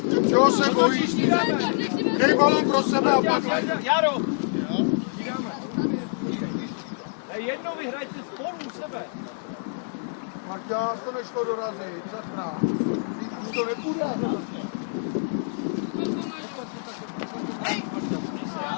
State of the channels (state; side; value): silent; right; digital silence